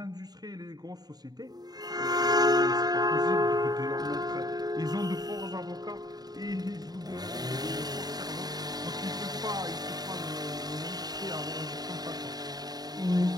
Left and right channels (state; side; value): late; left; 0.19 ms